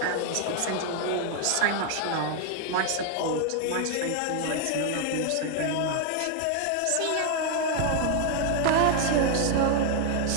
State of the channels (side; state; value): both; different; correlation 0.00